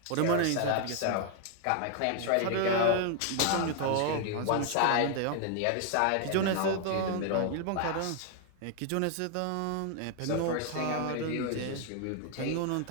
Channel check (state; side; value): different; both; correlation 0.00